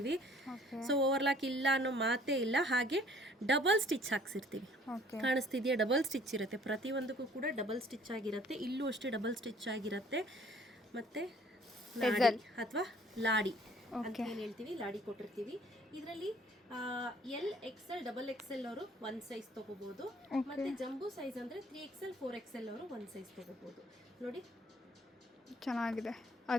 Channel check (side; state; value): both; normal; correlation 0.56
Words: ಸೊ ಓವರ್ಲಾಕ್ ಇಲ್ಲ ಅನ್ನೋ ಮಾತೇ ಇಲ್ಲ. ಹಾಗೆ ಡಬಲ್ ಸ್ಟಿಚ್ ಹಾಕ್ಸಿರ್ತೀವಿ. ಕಾಣಿಸ್ತಿದೆಯಾ? ಡಬಲ್ ಸ್ಟಿಚ್ ಇರುತ್ತೆ. ಪ್ರತಿಯೊಂದಕ್ಕೂ ಕೂಡ ಡಬಲ್ ಸ್ಟಿಚ್ ಆಗಿರುತ್ತೆ. ಇಲ್ಲೂ ಅಷ್ಟೇ ಡಬಲ್ ಸ್ಟಿಚ್ ಆಗಿರುತ್ತೆ. ಮತ್ತೆ ಅಥವಾ ಲಾಡಿ ಅಂತ ಏನ್ ಹೇಳ್ತೀವಿ, ಲಾಡಿ ಕೊಟ್ಟಿರ್ತೀವಿ. ಇದರಲ್ಲಿ XL, XXL ಅವರು ಒಂದ್ ಸೈಜ್ ತಗೋಬಹುದು. ಮತ್ತೆ ಜಂಬೂ ಸೈಜ್ ಅಂದ್ರೆ 3XL, 4XL ಅವರು ಒಂದ್ ಸೈಜ್ ತಗೋಬಹುದು. ನೋಡಿ, ಚೆನ್ನಾಗಿದೆ.